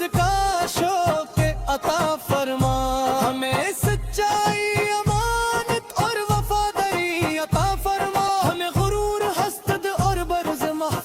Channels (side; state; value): both; identical; correlation 1.00